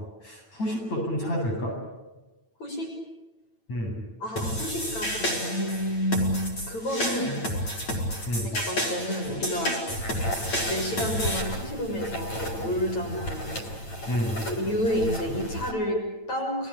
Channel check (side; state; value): right; late; 9.0 ms